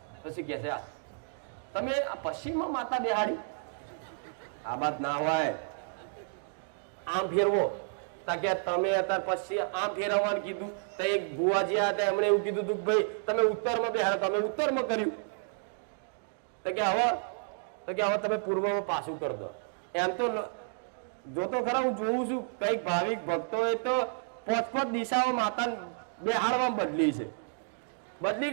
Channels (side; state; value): left; silent; digital silence